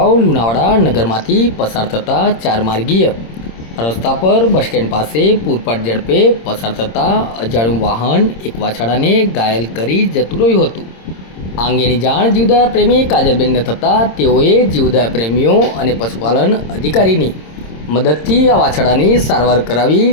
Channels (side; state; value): right; late; 26 ms